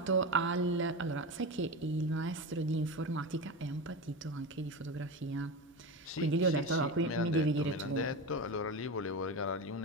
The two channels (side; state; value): both; normal; correlation 0.22